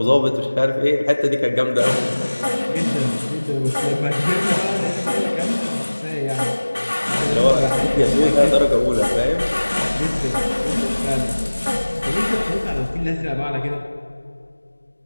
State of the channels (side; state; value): both; inverted; correlation -1.00